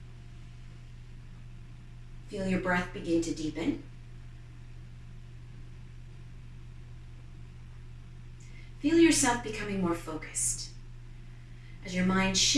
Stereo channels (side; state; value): both; identical; correlation 1.00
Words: Feel your breath begin to deepen. Feel yourself becoming more focused as your mind